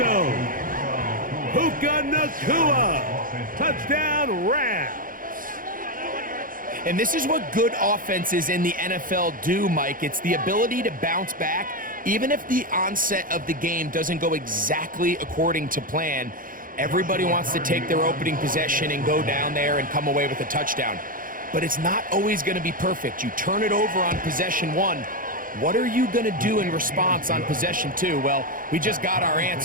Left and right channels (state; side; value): late; left; 0.40 ms